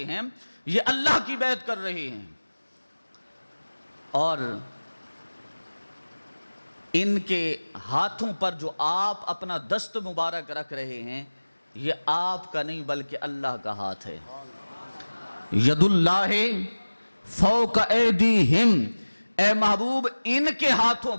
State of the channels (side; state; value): both; inverted; correlation -1.00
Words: ہیں یہ اللہ کی بیعت کر رہے ہیں اور ان کے ہاتھوں پر جو آپ اپنا دست مبارک رکھ رہے ہیں یہ آپ کا نہیں بلکہ اللہ کا ہاتھ ہے. ید اللہ فوق ایدیہم اے محبوب ان کے ہاتھوں